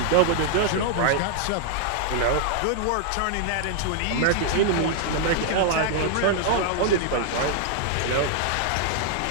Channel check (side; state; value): both; different; correlation 0.00